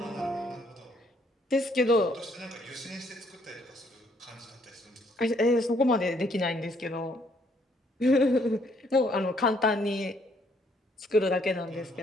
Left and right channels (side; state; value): both; normal; correlation 0.67